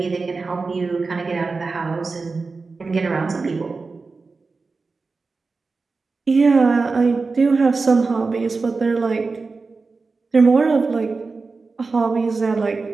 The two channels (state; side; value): quieter; left; 4.1 dB